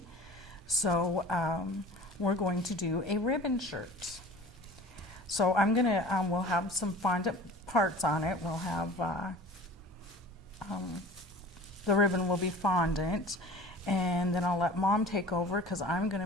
So we're going to do a ribbon shirt. So I'm gonna, we'll have some fondant parts on it. We'll have, the ribbon will be fondant. And then I'll let Mom take over because I'm going to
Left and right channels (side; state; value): both; normal; correlation 0.42